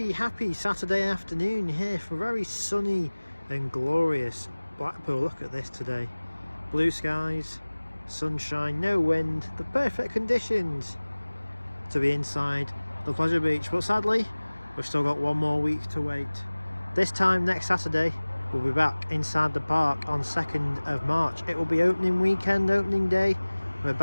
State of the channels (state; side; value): inverted; both; correlation -1.00